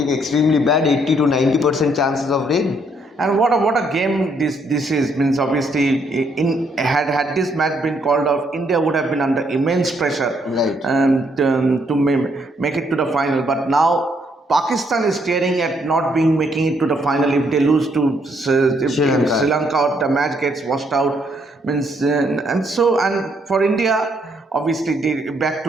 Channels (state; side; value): normal; both; correlation 0.71